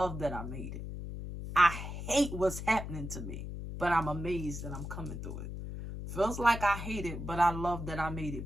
that I made it. I hate what's happening to me, but I'm amazed that I'm coming through it. Feels like I hate it, but I love that I made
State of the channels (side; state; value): left; noise; hum, 7 dB below the sound